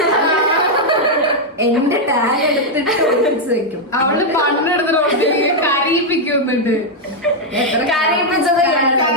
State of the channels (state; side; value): normal; both; correlation -0.01